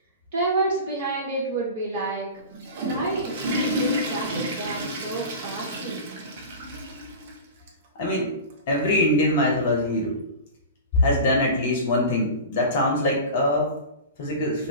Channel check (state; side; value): inverted; both; correlation -0.31